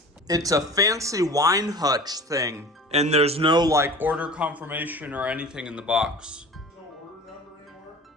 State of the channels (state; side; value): normal; both; correlation 0.40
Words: It's a fancy wine hutch thing, and there's no like order confirmation or anything in the box. No order number anymore?